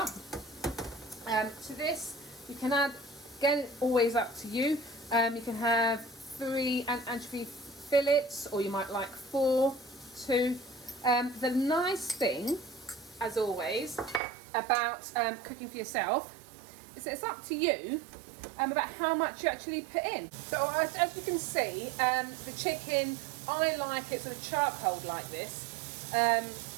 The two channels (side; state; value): left; drops out; at 14.2 s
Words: To this, you can add, again, always up to you. You can have 3 anchovy fillets, or you might like 4, 2. The nice thing, as always, about cooking for yourself is that it's up to you about how much you actually put in. So as you can see, the chicken, I like it sort of charcoal like this.